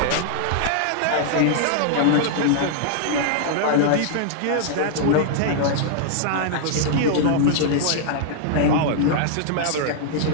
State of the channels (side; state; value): both; different; correlation -0.01